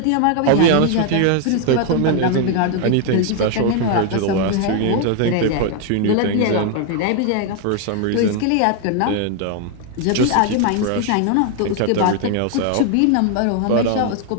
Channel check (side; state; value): both; different; correlation 0.00